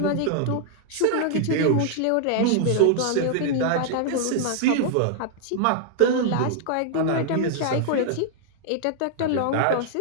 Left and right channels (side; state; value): both; different; correlation 0.00